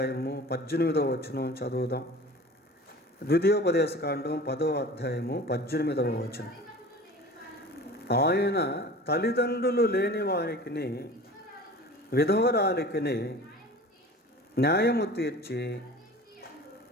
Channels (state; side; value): normal; both; correlation 0.40